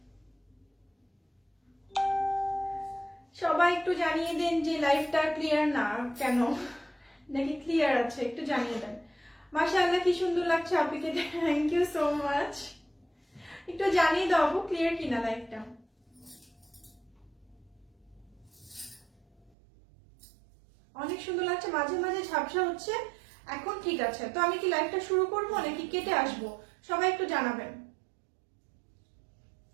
সবাই একটু জানিয়ে দেন যে লাইভটা ক্লিয়ার না কেন, নাকি ক্লিয়ার আছে, একটু জানিয়ে দেন। মাশাআল্লাহ কি সুন্দর লাগছে আপনাকে, থ্যাংক ইউ সো মাচ। একটু জানিয়ে দাও আপু ক্লিয়ার কিনা লাইভটা। অনেক সুন্দর লাগছে, মাঝে মাঝে ঝাপসা হচ্ছে, এখন ঠিক আছে। তো আমি কি লাইভটা শুরু করবো নাকি কেটে আসবো, সবাই একটু জানাবেন।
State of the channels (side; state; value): left; drops out; at 19.5 s